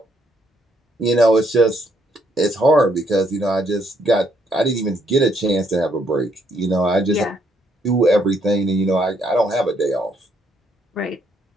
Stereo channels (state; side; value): normal; both; correlation 0.72